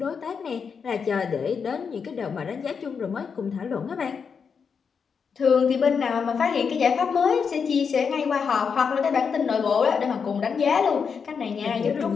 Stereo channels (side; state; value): right; quieter; 6.1 dB